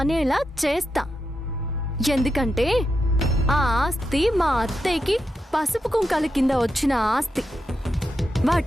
అనేలా చేస్తా. ఎందుకంటే ఆ ఆస్తి మా అత్తయ్యకి పసుపు కుంకాల కింద వచ్చిన ఆస్తి.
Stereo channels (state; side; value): normal; both; correlation 0.86